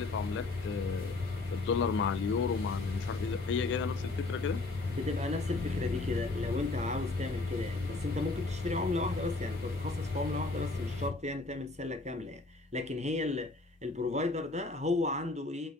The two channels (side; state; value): right; quieter; 3.3 dB